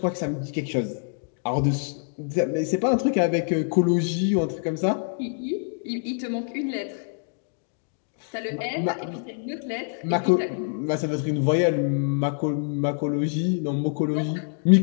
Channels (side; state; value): right; silent; digital silence